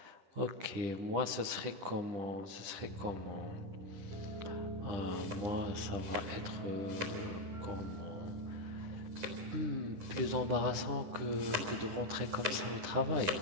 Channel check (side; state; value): left; late; 10 ms